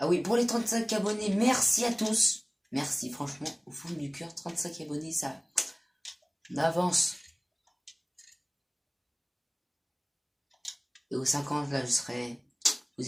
oui, pour les 35 abonnés, merci à tous. Merci, franchement, au fond du cœur, 35 abonnés, ça... On avance. Et aux 50, là, je serai... Vous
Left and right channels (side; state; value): both; identical; correlation 1.00